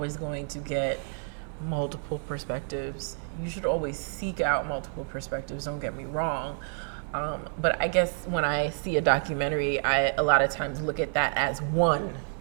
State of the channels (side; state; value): left; silent; 59 dB below the other